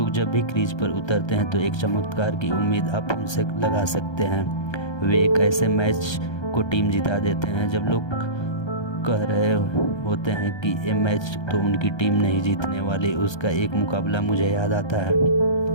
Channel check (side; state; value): right; late; 1.3 ms